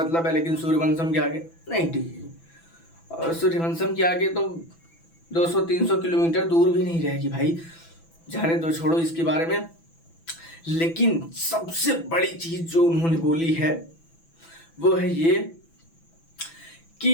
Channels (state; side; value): late; right; 6.0 ms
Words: है, लेकिन सूर्यवंशम के आगे नहीं टिकेगी। और सूर्यवंशम के आगे तो 200-300 किलोमीटर दूर भी नहीं रहेगी भाई। जाने दो, छोड़ो इसके बारे में। लेकिन सबसे बड़ी चीज जो उन्होंने बोली है वो है ये